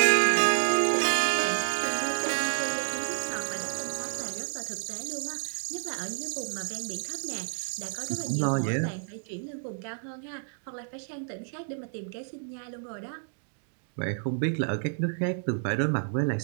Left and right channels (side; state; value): left; silent; digital silence